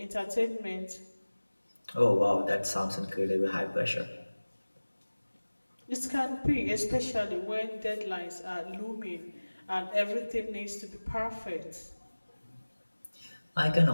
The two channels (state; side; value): inverted; both; correlation -1.00